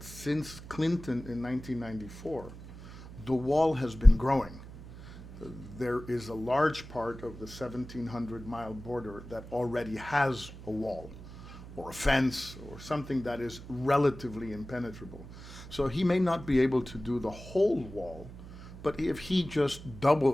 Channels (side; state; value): right; noise; hum, 15 dB below the sound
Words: Clinton in 1994, the wall has been growing. There is a large part of the 1,700-mile border that already has a wall or a fence or something that is relatively impenetrable. So he may not be able to do the whole wall, but if he just